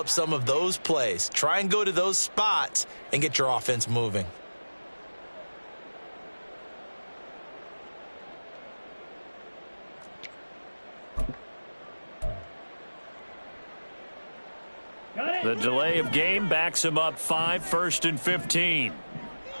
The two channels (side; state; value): both; inverted; correlation -1.00